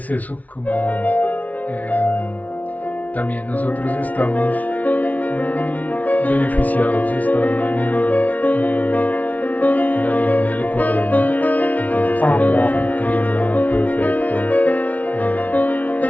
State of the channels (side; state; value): right; late; 0.072 ms